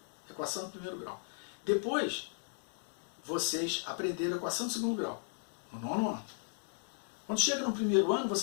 equação do primeiro grau. Depois, vocês aprenderam a equação do segundo grau, no 9º ano. Quando chega no primeiro ano,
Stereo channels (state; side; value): silent; right; 54 dB below the other